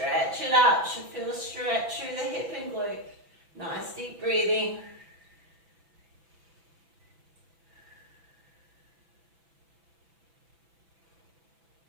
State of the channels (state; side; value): late; left; 6.0 ms